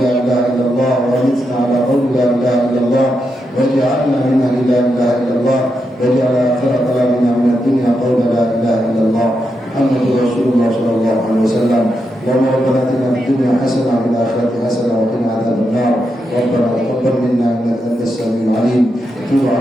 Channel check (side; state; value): both; normal; correlation 0.84